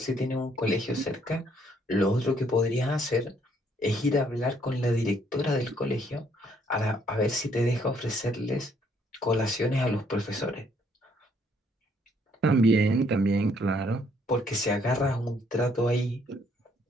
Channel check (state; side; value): normal; both; correlation 0.67